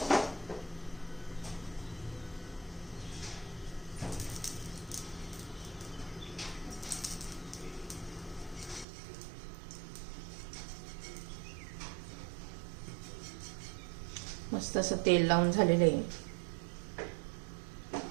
मस्त असं तेल लावून झालेलं आहे.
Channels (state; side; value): drops out; left; at 8.8 s